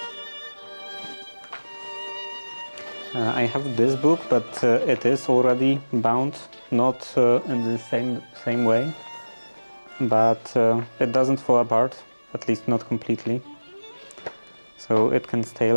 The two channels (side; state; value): both; inverted; correlation -1.00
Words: I have this book, but it is already bound, not in the same way, but it doesn't fall apart, at least not completely, so it can stay